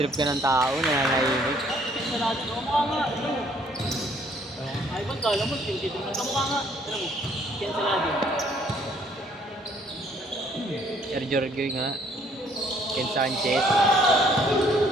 ka ng tao, nananahimik. Sa lahat. Mukha nga. Ay, ba't kala mo? Dito mo. Mukha nga. Ano mo? Cancelado. Sir Jorge nga. Ken Sanchez.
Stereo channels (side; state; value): both; normal; correlation 0.63